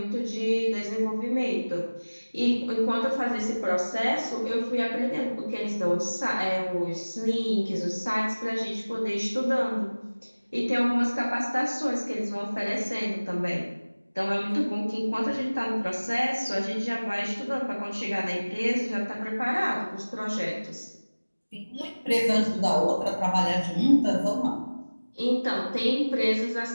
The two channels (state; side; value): inverted; both; correlation -1.00